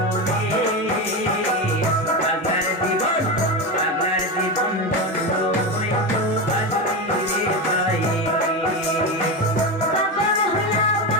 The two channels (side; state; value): both; normal; correlation 0.17